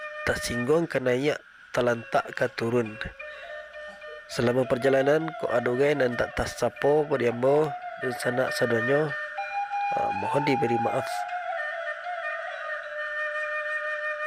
tersinggung ke naik, terlantak ke turun. Selama perjalanan ko adugai nan tak tersapo beriambo Dunsanak sadonyo, mohon diberi maaf.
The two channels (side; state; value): both; identical; correlation 1.00